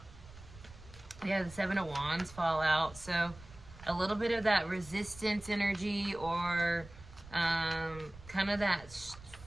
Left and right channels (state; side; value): noise; right; rumble, 18 dB below the sound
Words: Yeah, the Seven of Wands fall out. So a little bit of that resistance energy, or kind of that